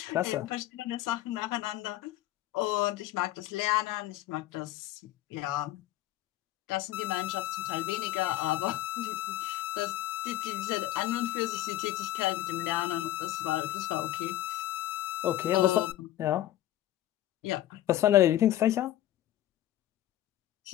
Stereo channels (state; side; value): quieter; right; 13.9 dB